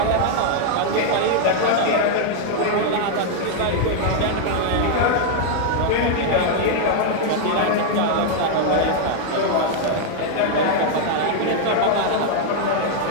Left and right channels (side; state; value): both; different; correlation 0.00